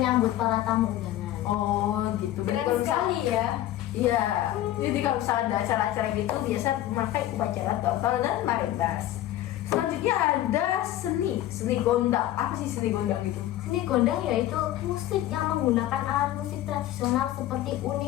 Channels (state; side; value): quieter; right; 13.7 dB